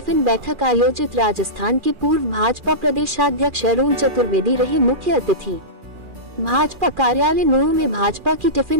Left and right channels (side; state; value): left; late; 2.4 ms